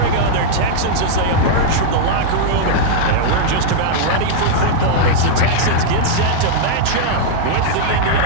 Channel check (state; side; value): different; both; correlation -0.02